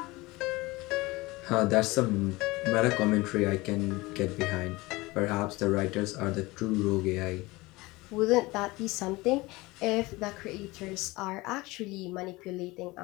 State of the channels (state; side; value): quieter; right; 21.6 dB